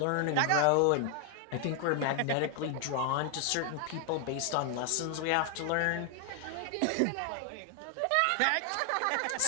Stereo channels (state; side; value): different; both; correlation 0.00